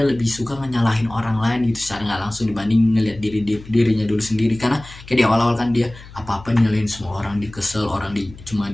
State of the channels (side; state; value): left; noise; hum, 18 dB below the sound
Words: lebih suka nyalahin orang lain gitu secara nggak langsung, dibanding ngelihat dirinya dulu sendiri. Karena kayak di awal-awal kan dia apa-apa nyalahin semua orang, dikesel orang, cuma